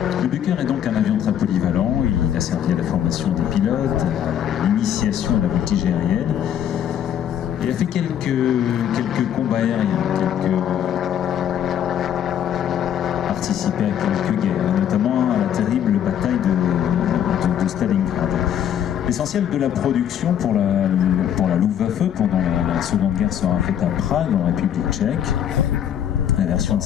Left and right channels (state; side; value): quieter; right; 9.7 dB